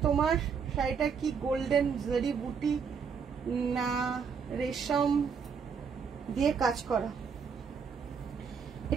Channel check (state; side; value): quieter; left; 6.2 dB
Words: তোমার শাড়িটা কি গোল্ডেন জরি বুটি না রেশম দিয়ে কাজ করা?